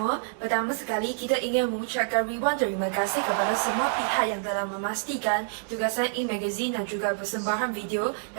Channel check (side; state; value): left; silent; digital silence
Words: Pertama sekali, kita ingin mengucapkan ribuan terima kasih kepada semua pihak yang telah memastikan tugasan e-magazine dan juga persembahan video